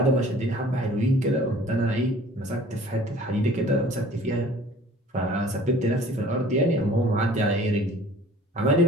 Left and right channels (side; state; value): both; normal; correlation 0.49